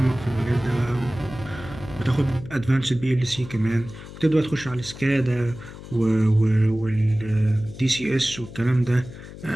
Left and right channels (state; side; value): noise; left; hum, 14 dB below the sound